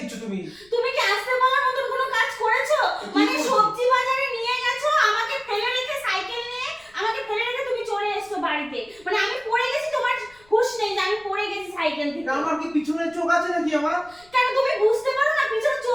তুমি। তুমি কি আসতে বলার মতো কোনো কাজ করেছো? কি মানে করেছি? সবজি বাজারে নিয়ে গেছো, আমাকে ফেলে রেখে সাইকেল নিয়ে আমাকে ফেলে রেখে তুমি চলে এসছো বাড়িতে। মানে আমি পড়ে গেছি, তোমার হুঁশ নেই যে আমি পড়ে গেছি সাইকেল থেকে। আমার কি পিছনে চোখ আছে নাকি আমার? কেন তুমি বুঝতে পারো না পিছনে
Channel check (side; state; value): left; noise; rumble, 29 dB below the sound